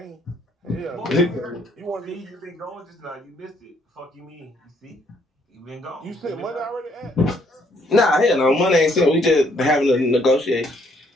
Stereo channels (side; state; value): both; normal; correlation 0.68